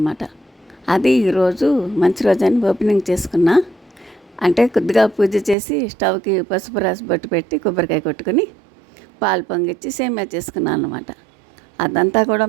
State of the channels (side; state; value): left; drops out; at 5.6 s